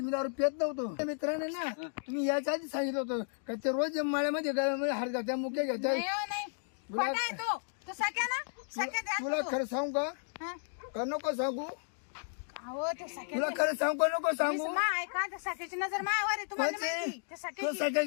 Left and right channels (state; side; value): silent; right; digital silence